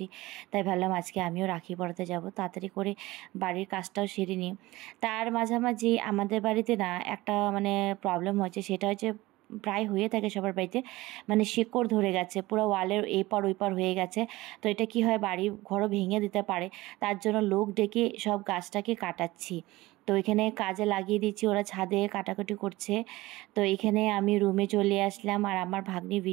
তাই ভাবলাম আজকে আমিও রাখি পরাতে যাব, তাড়াতাড়ি করে বাড়ির কাজটাও সেরে নিই। তার মাঝামাঝি আমাদের বাড়িতে না একটা মানে প্রবলেম হয়েছে, সেটা হচ্ছে প্রায় হয়ে থাকে সবার বাড়িতে, মানে শিকড় ধরে গেছে, পুরো ওয়ালের এপার ওইপার হয়ে গেছে। তো এটা কি হয়, বাড়ি ঘরও ভেঙে দিতে পারে, তার জন্য লোক ডেকে সব গাছটাকে কাটাচ্ছি। তো এখানে কাজে লাগিয়ে দিচ্ছি, ওরা ছাদে কাটাকুটি করছে। তো এখানে আমি রুমে চলে আসলাম, আর আমার ভাগ্নি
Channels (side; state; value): left; quieter; 19.3 dB